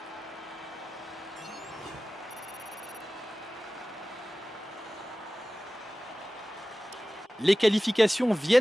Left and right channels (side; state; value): both; normal; correlation 0.97